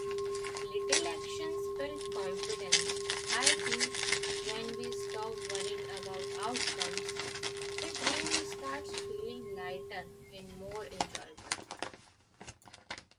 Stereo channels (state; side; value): identical; both; correlation 1.00